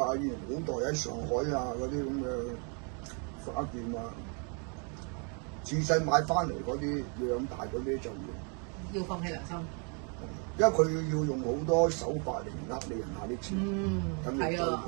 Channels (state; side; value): quieter; left; 38.0 dB